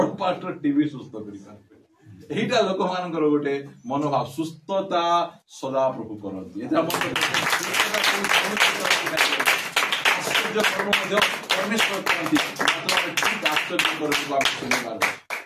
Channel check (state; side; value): identical; both; correlation 1.00